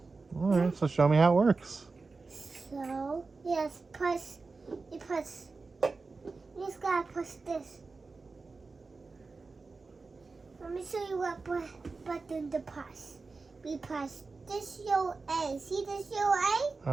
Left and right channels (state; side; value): quieter; left; 4.1 dB